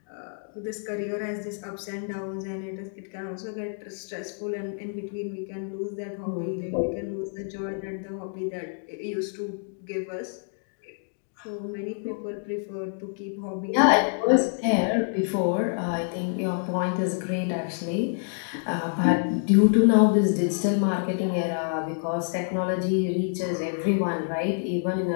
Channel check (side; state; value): right; silent; 60 dB below the other